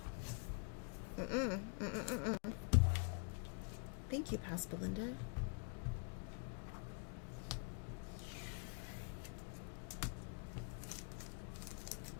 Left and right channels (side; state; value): right; quieter; 38.9 dB